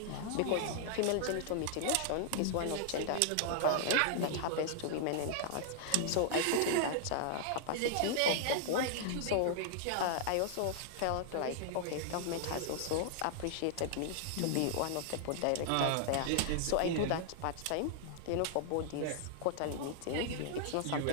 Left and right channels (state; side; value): different; both; correlation -0.01